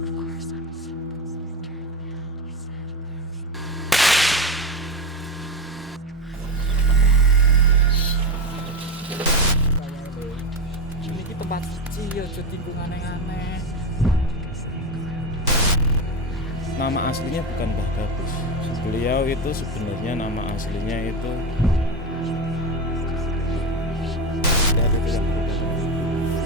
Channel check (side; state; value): both; normal; correlation 0.18